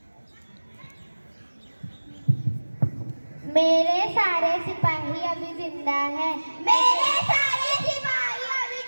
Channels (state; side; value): inverted; both; correlation -1.00